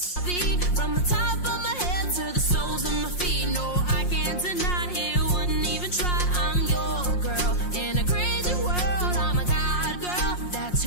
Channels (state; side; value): late; right; 5.6 ms